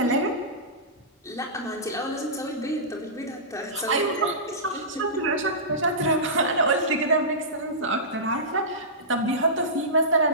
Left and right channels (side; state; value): both; normal; correlation -0.19